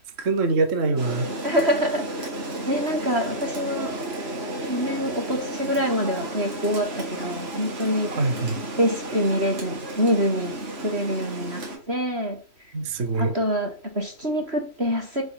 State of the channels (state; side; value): late; left; 3.1 ms